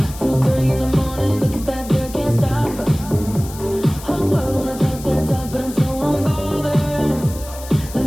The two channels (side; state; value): left; noise; hiss, 16 dB below the sound